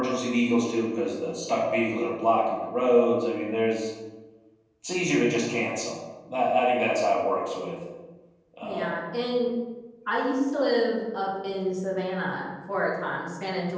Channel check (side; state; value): both; identical; correlation 1.00